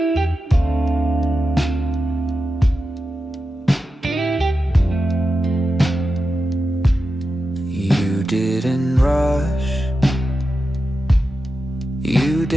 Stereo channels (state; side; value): normal; both; correlation 0.90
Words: Didn't rush, you